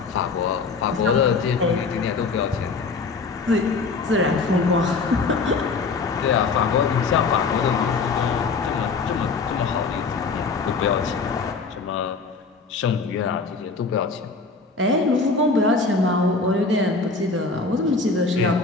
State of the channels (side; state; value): right; quieter; 4.3 dB